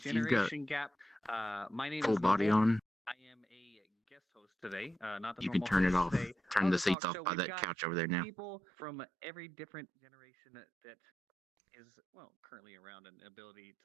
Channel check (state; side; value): drops out; left; at 7.0 s